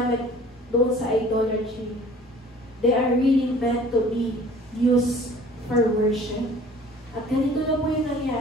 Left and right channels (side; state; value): both; normal; correlation 0.49